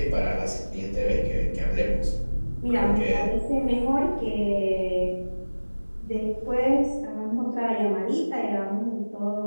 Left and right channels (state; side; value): inverted; both; correlation -1.00